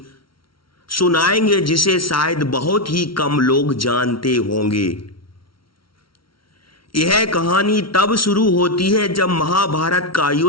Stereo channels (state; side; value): late; right; 0.74 ms